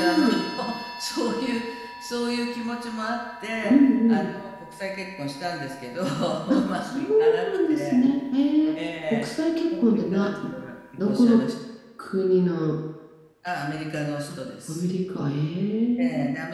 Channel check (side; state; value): both; identical; correlation 1.00